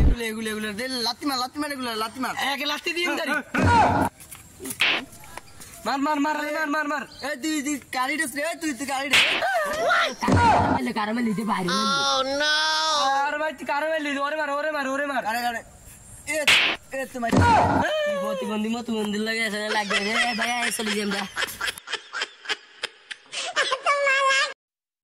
এগুলো লাত্তি মার এগুলো লাত্তি মার, এক লাত্তি দিন দাঁড়ি মার মার মার মার মার। এই তুই কারি ড্রেস রে, তুই গাড়ি কারামেল দিতে বাইরে। আর ভাই তুই কারামেল দিতে, ওরে মার। আরে এ তোমার প্রতিবন্ধী মতো মন্দির লাগে লাগবে ভাই, চলে যাই আমরা।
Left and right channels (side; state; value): both; identical; correlation 1.00